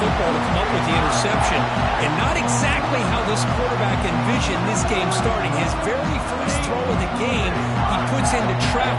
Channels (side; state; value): both; identical; correlation 1.00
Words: to come up with the interception. And not exactly how this quarterback envisioned this game starting. His very first throw of the game, he puts into